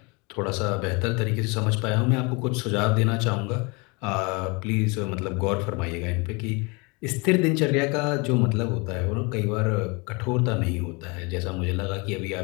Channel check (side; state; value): right; quieter; 29.3 dB